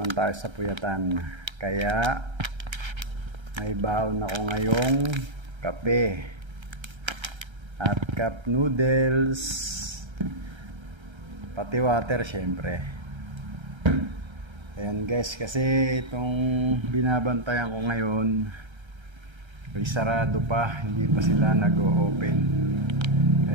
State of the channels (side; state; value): left; late; 1.3 ms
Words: tayo sa puyatan. Kaya may baon ako ngayong kape at cup noodles, pati water syempre. Ayan guys, kasi itong binabantayan ko ngayon ay sarado pa, hindi pa sila nag-o-open.